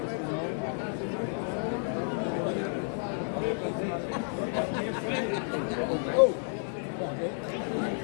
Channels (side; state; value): right; silent; 57 dB below the other